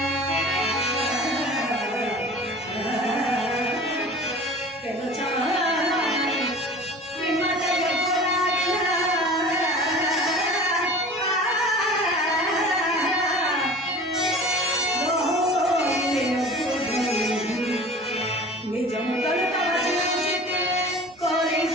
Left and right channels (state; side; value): normal; both; correlation 0.40